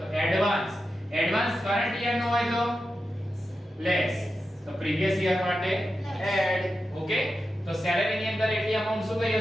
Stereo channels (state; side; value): normal; both; correlation 0.90